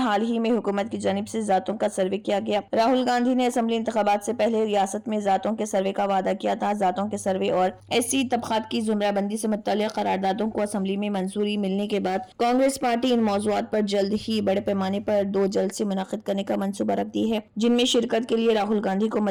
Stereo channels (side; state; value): both; identical; correlation 1.00